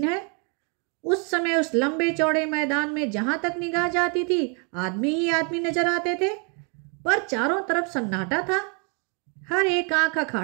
है। उस समय उस लंबे चौड़े मैदान में जहां तक निगाह जाती थी आदमी ही आदमी नजर आते थे, पर चारों तरफ सन्नाटा था। हर एक आंख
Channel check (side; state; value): left; quieter; 36.0 dB